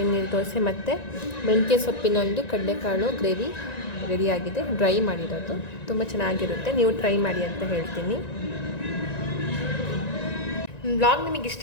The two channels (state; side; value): late; right; 1.9 ms